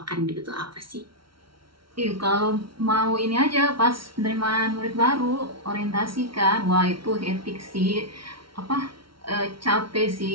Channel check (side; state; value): left; late; 0.74 ms